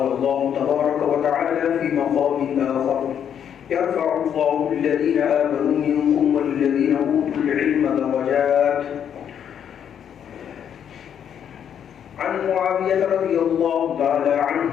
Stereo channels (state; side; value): quieter; right; 8.7 dB